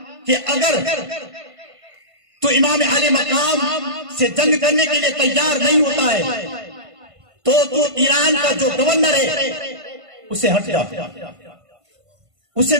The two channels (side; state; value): left; late; 1.5 ms